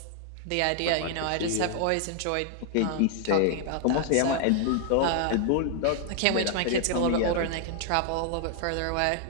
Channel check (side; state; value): both; different; correlation 0.00